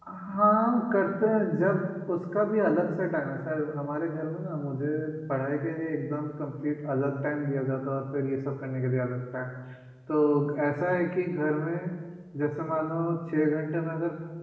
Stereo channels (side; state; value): both; identical; correlation 1.00